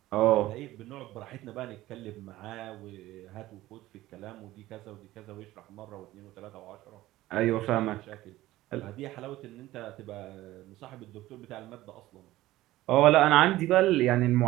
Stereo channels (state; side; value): quieter; left; 16.4 dB